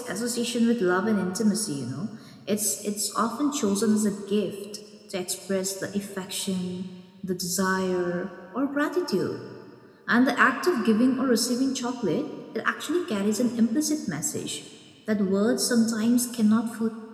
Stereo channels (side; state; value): both; identical; correlation 1.00